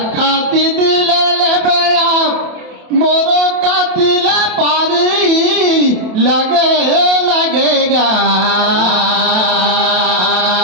दिले ले बया मोरो का दिला पारी लगेगा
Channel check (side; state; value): left; late; 27 ms